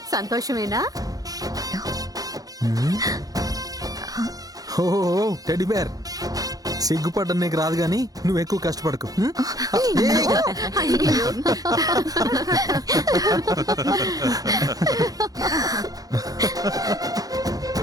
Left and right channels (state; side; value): late; left; 0.18 ms